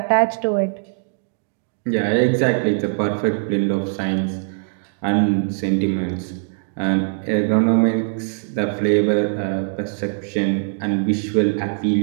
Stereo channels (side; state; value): left; silent; digital silence